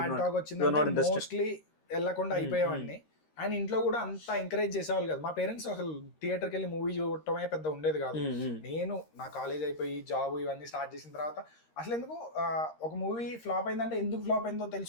టాక్ వచ్చిందంటే మోస్ట్లీ వెళ్ళకుండా అయిపోయేవాడిని. అండ్ ఇంట్లో కూడా అంత ఎంకరేజ్ చేసేవాళ్ళు కదా. మా పేరెంట్స్ అసలు థియేటర్కి వెళ్ళి మూవీ చూడటమే పెద్ద ఉండేది కాదు. నేను నా కాలేజ్ అయిపోయి జాబ్ ఇవన్నీ స్టార్ట్ చేసిన తర్వాత అసలు ఎందుకు ఒక మూవీ ఫ్లాప్ అయిందంటే ఎందుకు ఫ్లాప్ అయిందో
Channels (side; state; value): right; late; 13 ms